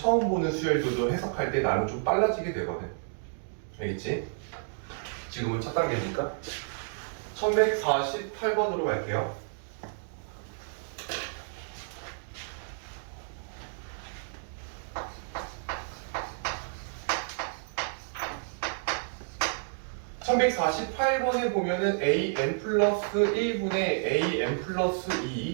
보는 수열들도 해석할 때 나는 좀 빨라지게 되거든. 알겠지? 지금은 첫 단계니까 1148번으로 갈게요. (1148번에) 보면은 an 플러스 1분의 an 플러스 2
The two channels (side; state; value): left; silent; digital silence